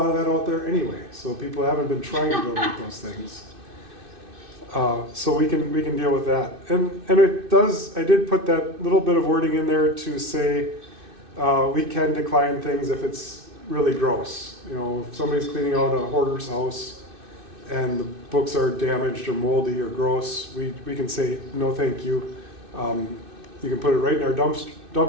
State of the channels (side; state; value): left; late; 2.6 ms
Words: of that out there anyway, so people haven't been trying to donate those things. So we can deal with that. And I did put that little bit of wording in there to say we can decline things if it's really gross. If somebody's cleaning out a hoarder's house and the books are damaged or moldy or gross, we can say no thank you. You can put it right in our